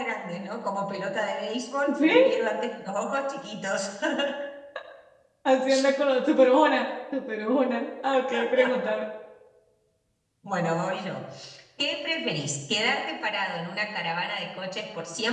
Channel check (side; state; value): both; identical; correlation 1.00